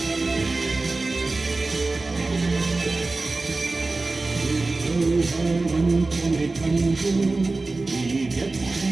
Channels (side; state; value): left; quieter; 3.4 dB